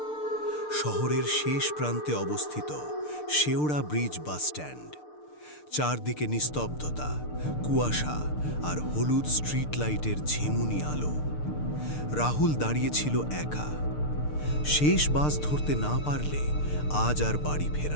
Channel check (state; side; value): late; right; 6.7 ms